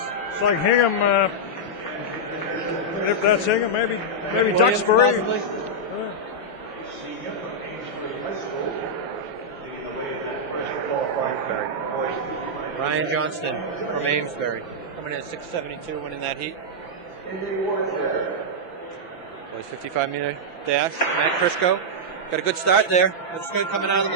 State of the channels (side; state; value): right; late; 5.9 ms